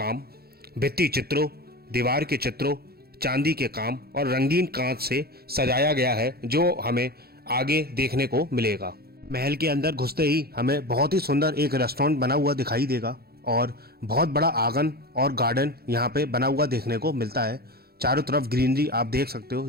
भित्ति चित्रों, दीवार के चित्रों, चांदी के काम और रंगीन कांच से सजाया गया है, जो हमें आगे देखने को मिलेगा। महल के अंदर घुसते ही हमें बहुत ही सुंदर एक रेस्टोरेंट बना हुआ दिखाई देगा और बहुत बड़ा आंगन और गार्डन यहाँ पे बना हुआ देखने को मिलता है। चारों तरफ ग्रीनरी आप देख सकते हो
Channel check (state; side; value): late; left; 0.45 ms